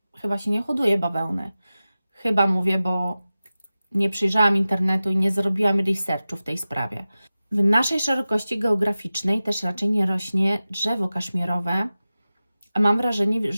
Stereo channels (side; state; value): both; inverted; correlation -0.95